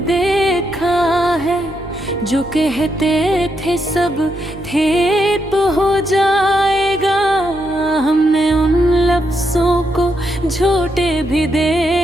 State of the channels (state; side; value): noise; right; hum, 17 dB below the sound